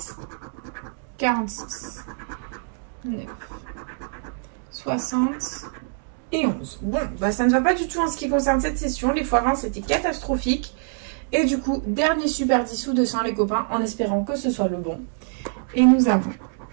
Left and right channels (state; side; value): silent; left; 62 dB below the other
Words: 46, 9, 60 et 11. Bon, bah ça ne va pas du tout en ce qui concerne cette session. Les x20 c'était catastrophique. Et du coup, dernier super 10 sous 200 les copains, en espérant que ce soit le bon. Et nous avons